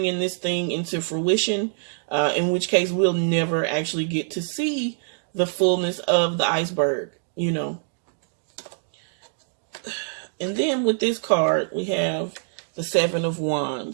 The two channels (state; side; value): silent; left; digital silence